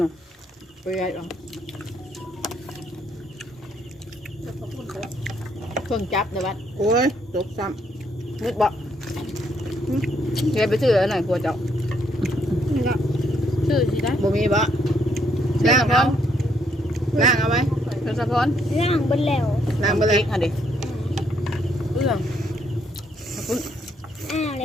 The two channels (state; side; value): normal; both; correlation 0.71